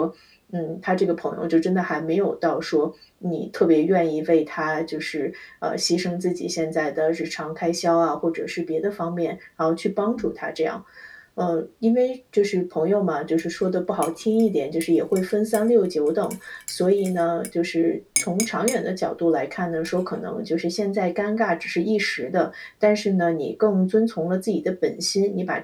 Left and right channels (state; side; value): identical; both; correlation 1.00